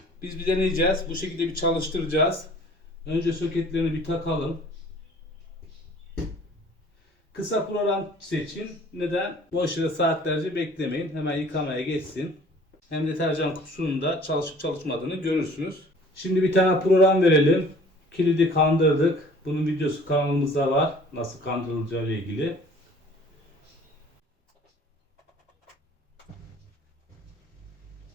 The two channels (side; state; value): both; normal; correlation 0.51